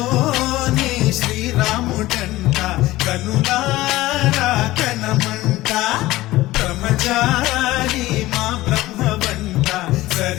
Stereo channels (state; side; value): quieter; right; 17.5 dB